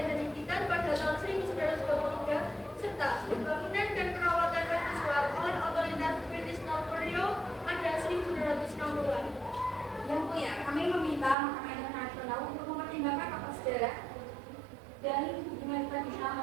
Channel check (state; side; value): drops out; left; at 11.4 s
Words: dan Likitan pada tahun 1923, serta pembangunan dan perawatan mercusuar oleh otoritas British North Borneo pada 1960-an. Yang mulia, kami meminta Mahkamah Internasional untuk mempertimbangkan fakta sejarah dan hubungan tradisional